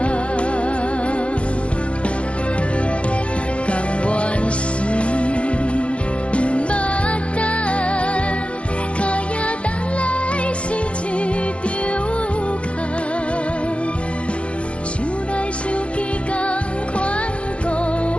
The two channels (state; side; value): late; right; 0.060 ms